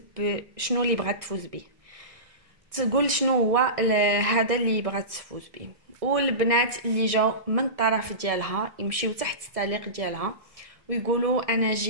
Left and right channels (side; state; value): left; late; 1.6 ms